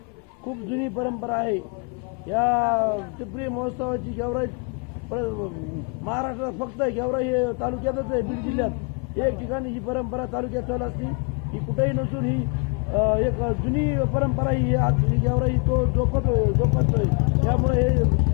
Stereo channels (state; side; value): quieter; right; 36.7 dB